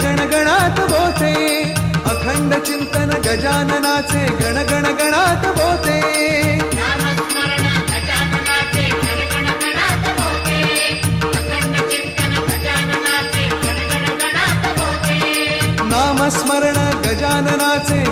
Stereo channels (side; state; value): both; identical; correlation 1.00